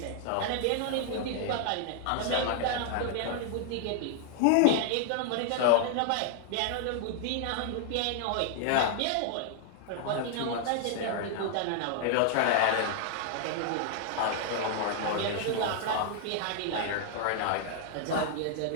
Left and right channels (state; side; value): different; both; correlation -0.01